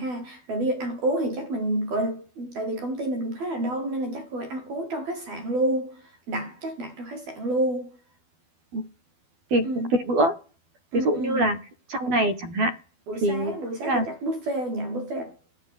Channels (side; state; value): left; late; 12 ms